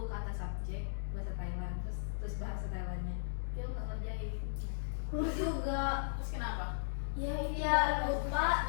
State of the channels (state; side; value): silent; right; digital silence